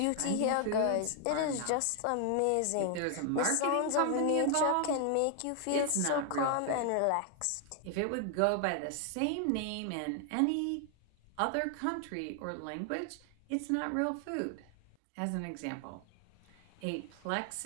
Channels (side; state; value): both; different; correlation 0.00